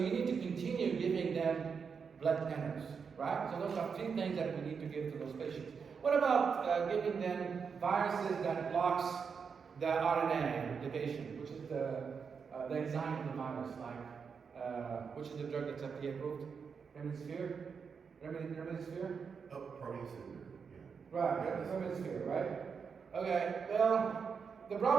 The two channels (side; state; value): left; quieter; 6.0 dB